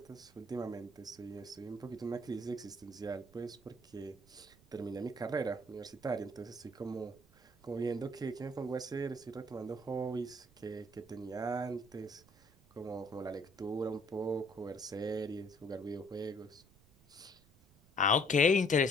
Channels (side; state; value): right; noise; rumble, 27 dB below the sound